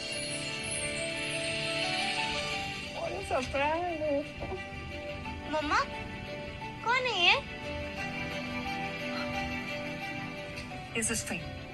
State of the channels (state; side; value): identical; both; correlation 1.00